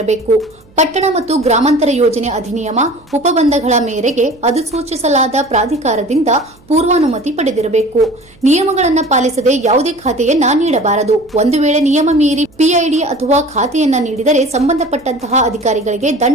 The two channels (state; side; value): noise; right; hum, 29 dB below the sound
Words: ಪಟ್ಟಣ ಮತ್ತು ಗ್ರಾಮಾಂತರ ಯೋಜನೆ ಅಧಿನಿಯಮ ಉಪಬಂಧಗಳ ಮೇರೆಗೆ ಅಧಿಸೂಚಿಸಲಾದ ಪ್ರಾಧಿಕಾರದಿಂದ ಪೂರ್ವಾನುಮತಿ ಪಡೆದಿರಬೇಕು. ನಿಯಮಗಳನ್ನು ಪಾಲಿಸದೆ ಯಾವುದೇ ಖಾತೆಯನ್ನ ನೀಡಬಾರದು. ಒಂದು ವೇಳೆ ನಿಯಮ ಮೀರಿ ಪಿಐಡಿ ಅಥವಾ ಖಾತೆಯನ್ನ ನೀಡಿದರೆ ಸಂಬಂಧಪಟ್ಟಂತಹ ಅಧಿಕಾರಿಗಳಿಗೆ